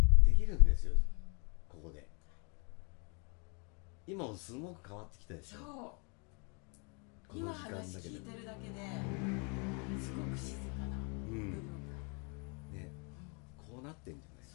できるんですよ、ここで。今もすごく変わってきたでしょ。そう今話聞いてるだけですごく静かな部分が、ね、こうなってんじゃないで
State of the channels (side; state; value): right; quieter; 35.3 dB